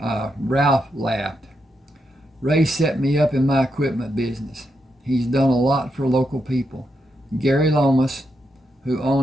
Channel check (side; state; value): both; normal; correlation 0.83